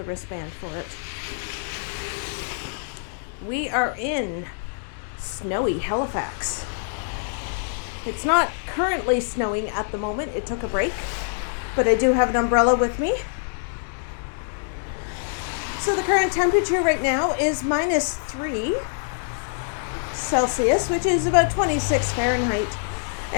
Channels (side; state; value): right; silent; digital silence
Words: wristband for it. We are in snowy Halifax. It's not currently snowing at the moment. It took a break, but I do have an umbrella with me. So the current temperature right now is -3 Celsius, which is about 26 Fahrenheit.